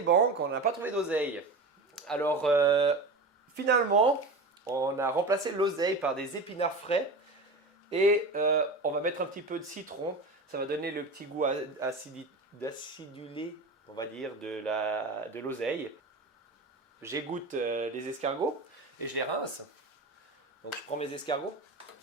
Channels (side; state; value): left; quieter; 3.1 dB